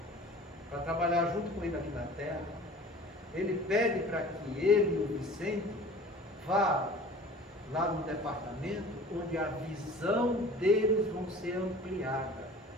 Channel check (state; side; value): normal; both; correlation 0.44